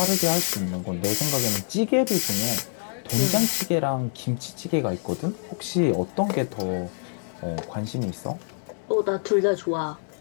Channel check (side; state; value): right; silent; digital silence